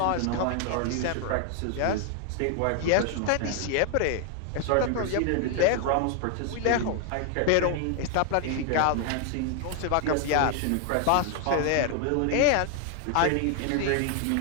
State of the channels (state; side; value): different; both; correlation 0.00